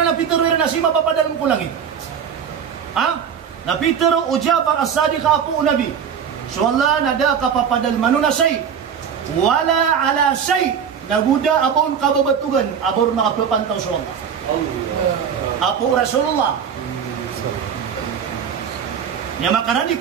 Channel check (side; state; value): left; quieter; 7.6 dB